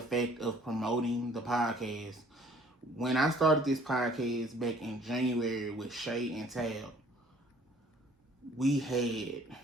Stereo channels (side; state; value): both; normal; correlation 0.56